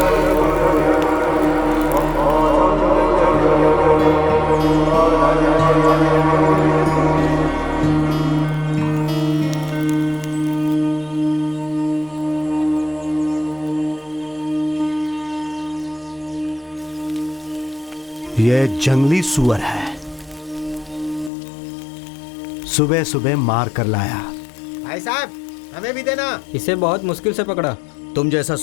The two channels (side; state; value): right; drops out; at 21.3 s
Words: ये जंगली सुअर है, सुबह सुबह मार कर लाया। भाई साहब, हमें भी देना। इसे बहुत मुश्किल से पकड़ा। तुम जैसा